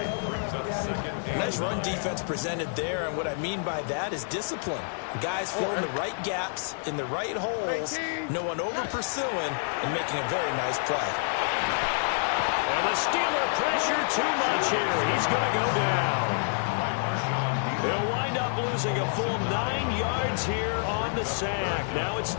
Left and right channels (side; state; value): right; silent; digital silence